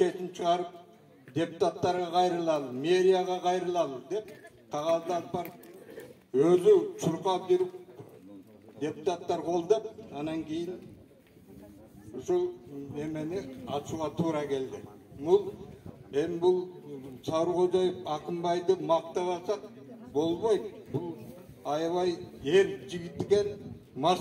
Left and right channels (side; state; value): both; identical; correlation 1.00